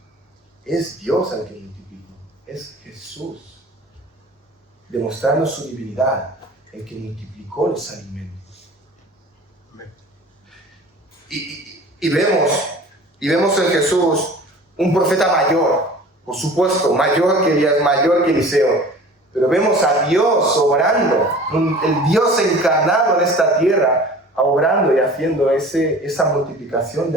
es Dios el que multiplicó. Es Jesús, demostrando su divinidad, el que multiplicó los alimentos. Y vemos en Jesús un profeta mayor, por supuesto, mayor que Elías, mayor que Eliseo, pero vemos a Dios obrando, el Dios encarnado en esta tierra, obrando y haciendo esa multiplicación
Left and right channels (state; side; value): normal; both; correlation 0.43